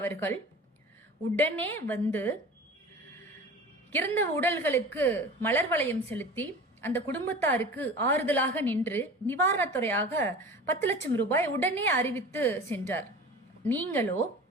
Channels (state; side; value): normal; both; correlation 0.37